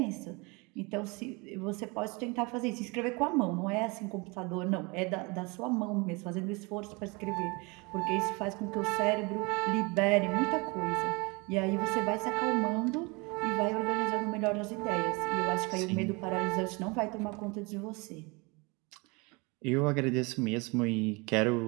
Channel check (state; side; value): quieter; left; 27.9 dB